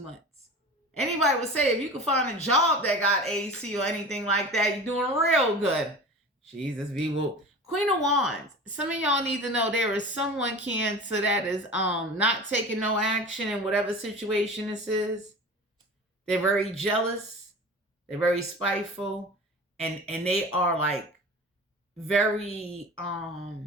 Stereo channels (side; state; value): both; normal; correlation 0.36